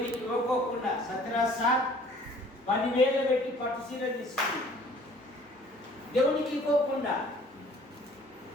ఇవ్వకోకుండా సత్రాసా 10,000 పెట్టి పట్టు చీర తీసుకుంది. దేవునికి ఇవ్వకుండా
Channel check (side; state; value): both; normal; correlation 0.54